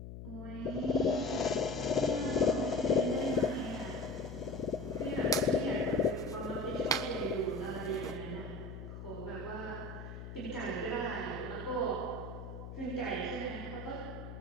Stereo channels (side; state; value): left; noise; hum, 10 dB below the sound